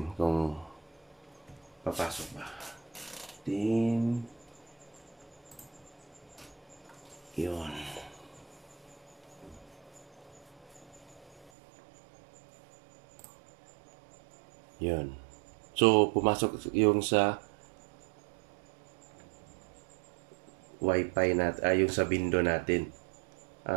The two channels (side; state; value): left; drops out; at 11.5 s